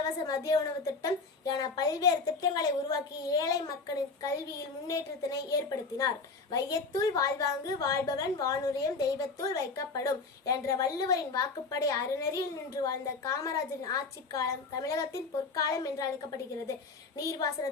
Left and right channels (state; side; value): quieter; right; 4.2 dB